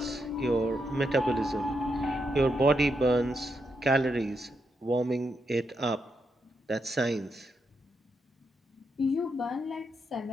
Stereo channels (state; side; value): normal; both; correlation 0.82